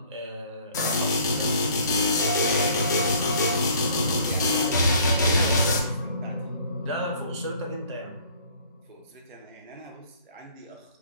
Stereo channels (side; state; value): both; inverted; correlation -0.55